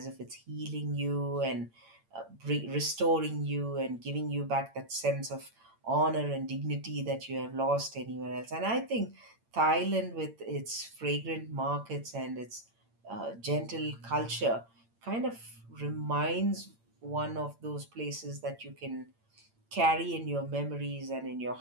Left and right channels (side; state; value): left; late; 8.8 ms